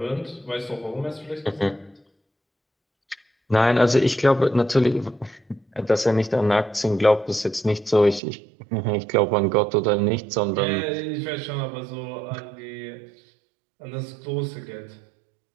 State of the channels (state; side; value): drops out; left; at 8.2 s